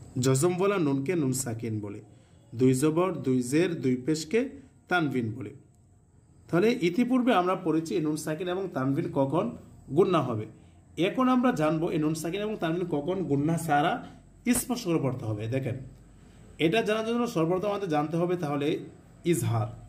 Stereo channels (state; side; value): identical; both; correlation 1.00